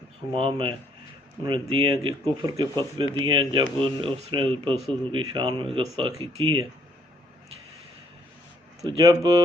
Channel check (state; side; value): normal; both; correlation 0.67